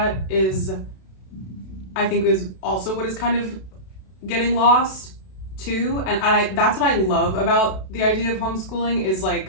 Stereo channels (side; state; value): right; late; 32 ms